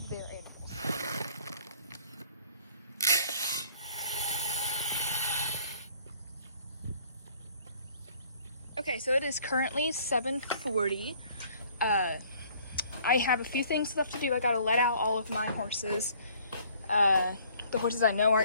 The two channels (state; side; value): inverted; both; correlation -0.58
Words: their animals. Okay, so it is currently 7:40. I have a few things left to do. I gotta let out all of my horses. The horses I know